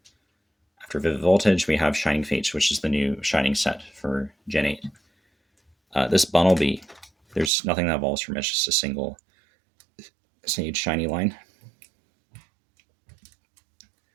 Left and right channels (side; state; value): left; drops out; at 7.5 s